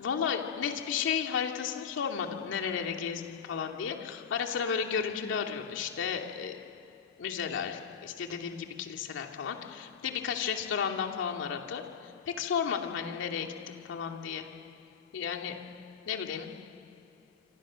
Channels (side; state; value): right; quieter; 6.9 dB